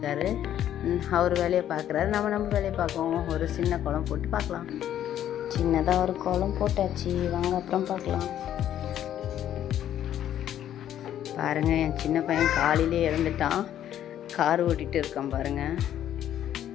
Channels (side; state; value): right; quieter; 11.1 dB